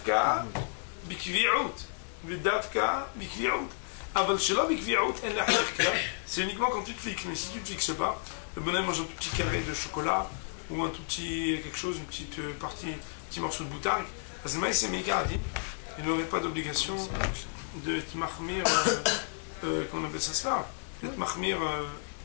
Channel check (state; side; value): silent; right; digital silence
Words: bikvi'out. Vedavka bikvi'out. Aval shelo bikvi'out en la herkla. C'est uniquement quand tu te fixes. Mais si tu ne te fixes pas, le bonhomme mange un tout petit carré de chocolat ou un tout petit quelque chose, une petite partie, un petit morceau de boutargue. Azmaï c'est Meikaradin. Il n'aurait pas d'obligation de te mahmir, qu'on appelle ça cela, d'être mahmir